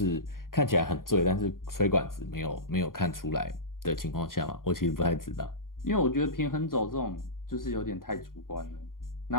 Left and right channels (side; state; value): right; late; 0.91 ms